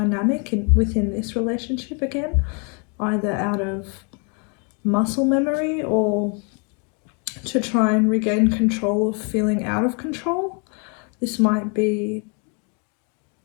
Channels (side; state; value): right; quieter; 37.0 dB